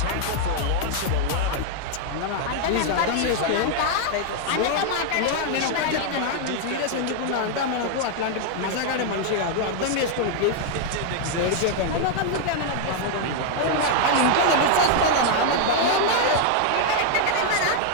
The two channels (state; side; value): different; both; correlation 0.00